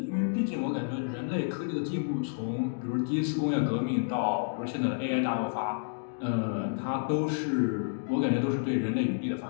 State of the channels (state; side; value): silent; right; digital silence